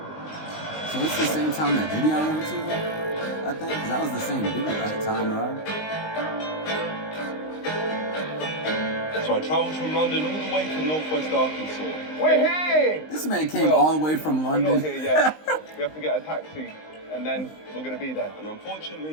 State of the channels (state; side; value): late; right; 19 ms